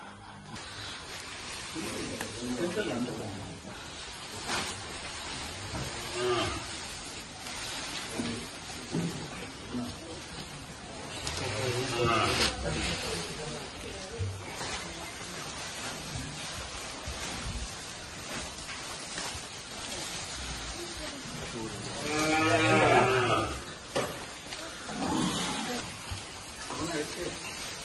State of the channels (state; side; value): identical; both; correlation 1.00